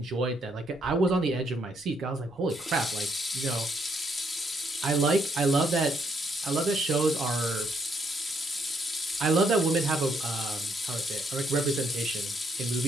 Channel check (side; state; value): both; normal; correlation 0.73